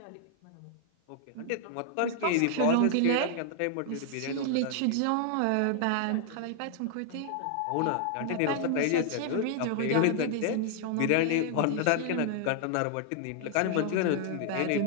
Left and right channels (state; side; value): different; both; correlation 0.00